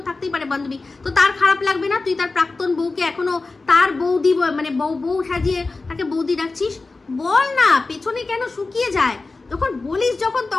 থাকতেই পারে বান্ধবী। তো তার খারাপ লাগবে না তুই তার প্রাক্তন বউকে এখনো তার বৌদি মানে বউ সাজিয়ে তাকে বৌদি ডাকছিস? বল না, পেছনে কেন শুকিয়ে যায়? যখন বলিস যখন,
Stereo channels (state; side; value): quieter; right; 3.6 dB